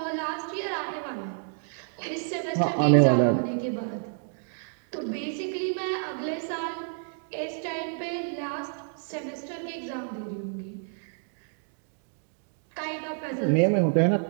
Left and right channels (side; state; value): left; silent; 59 dB below the other